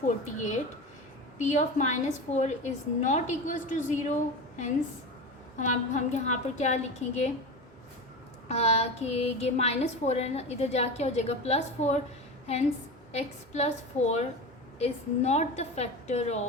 p of -4 is not equals to zero, hence हम यहाँ पर क्या लिखेंगे कि ये -4 है ना, इधर जाके हो जाएगा +4, hence x + 4 is not the factor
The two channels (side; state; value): both; normal; correlation 0.26